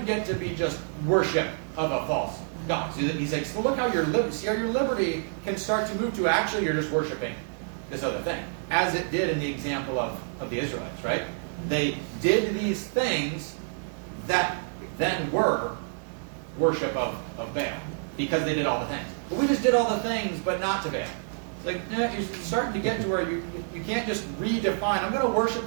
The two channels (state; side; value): silent; left; digital silence